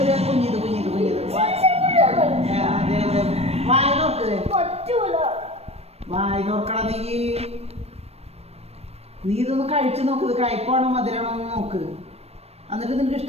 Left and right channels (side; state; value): left; late; 0.30 ms